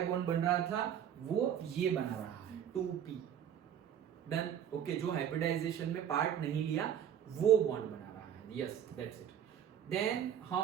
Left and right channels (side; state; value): left; quieter; 9.3 dB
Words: बॉन्ड बन रहा था वो ये बना रहा है 2p। Done, okay. जो हाइब्रिडाइजेशन में पार्ट नहीं लिया वो बॉन्ड बना रहा है, यस दैट्स इट। देन